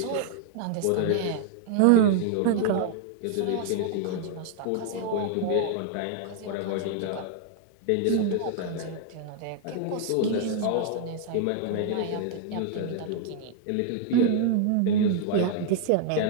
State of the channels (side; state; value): both; different; correlation 0.00